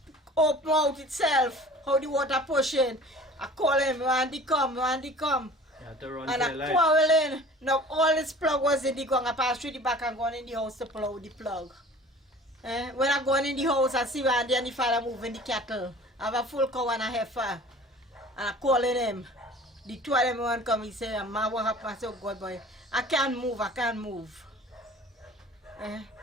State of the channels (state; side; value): normal; both; correlation 0.45